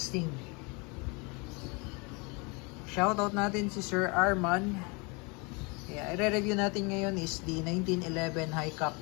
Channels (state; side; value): quieter; right; 29.9 dB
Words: Shoutout natin si Sir Arman. I-review natin ngayon is the 1911 High Cap.